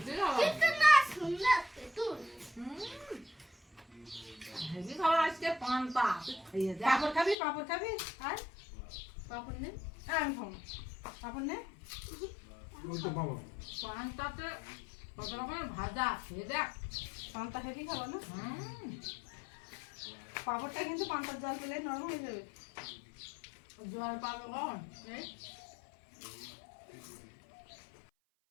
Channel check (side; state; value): right; drops out; at 7.4 s